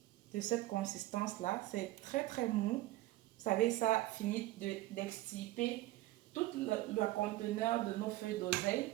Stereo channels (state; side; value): quieter; left; 17.0 dB